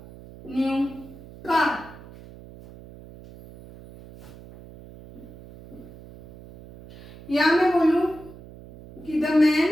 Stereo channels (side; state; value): right; noise; hum, 19 dB below the sound